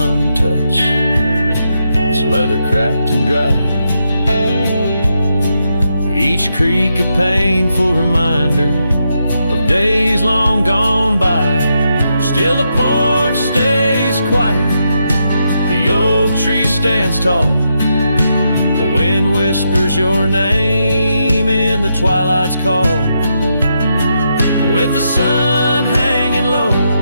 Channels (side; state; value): both; inverted; correlation -0.82